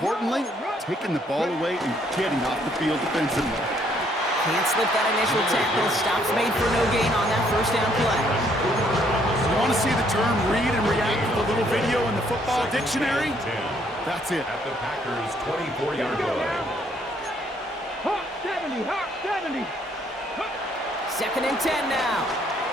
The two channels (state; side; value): normal; both; correlation 0.67